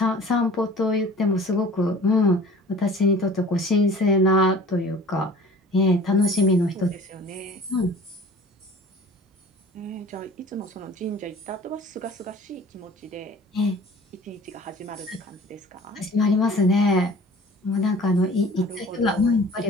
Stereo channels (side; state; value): both; normal; correlation 0.46